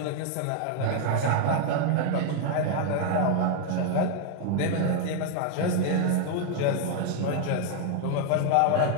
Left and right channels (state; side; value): different; both; correlation 0.00